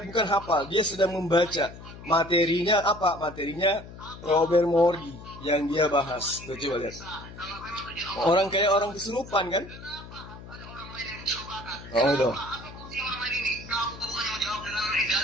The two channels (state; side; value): noise; left; hum, 15 dB below the sound